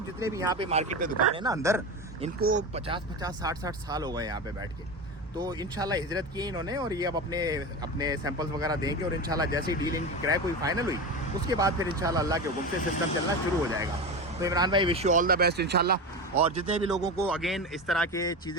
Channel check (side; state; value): both; normal; correlation 0.23